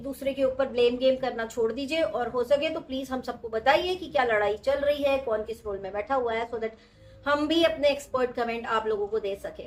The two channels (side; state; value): both; identical; correlation 1.00